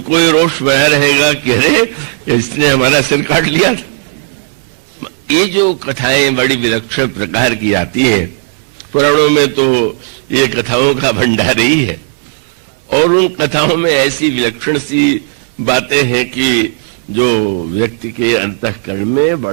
ये रोष बना रहेगा कि अरे इसने हमारा सिर काट लिया। ये जो कथाएं बड़ी विलक्षण प्रकार की आती है पुराणों में, तो ये कथाओं का भंडार ही है, और उन कथाओं में ऐसी विलक्षण सी बातें हैं कि जो व्यक्ति के अंतःकरण में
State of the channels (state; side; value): silent; left; digital silence